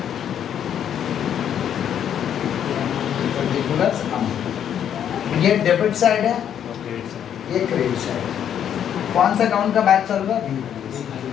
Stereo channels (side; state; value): right; quieter; 9.3 dB